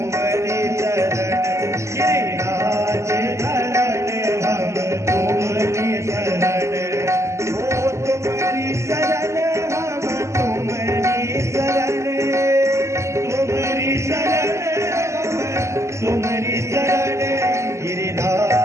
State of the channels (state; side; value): late; left; 0.14 ms